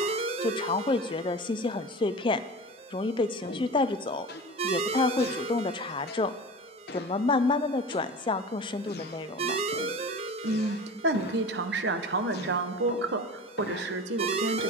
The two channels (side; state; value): both; normal; correlation 0.33